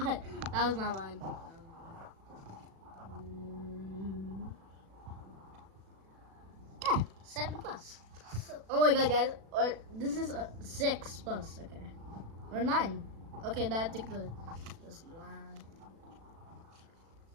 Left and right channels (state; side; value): late; left; 36 ms